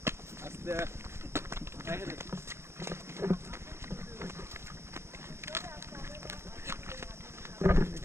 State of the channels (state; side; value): late; left; 0.13 ms